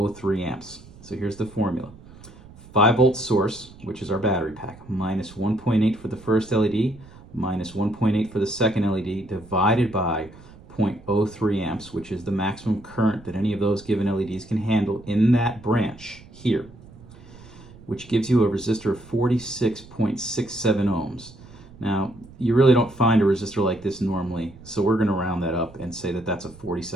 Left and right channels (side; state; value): right; noise; rumble, 21 dB below the sound